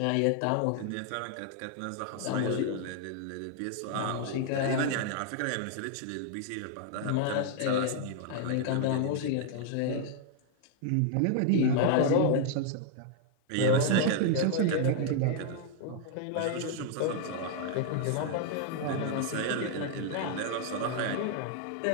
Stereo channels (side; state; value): both; different; correlation 0.00